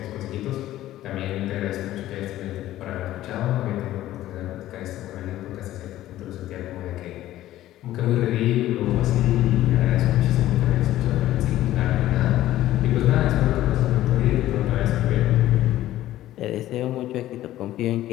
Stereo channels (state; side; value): quieter; right; 14.2 dB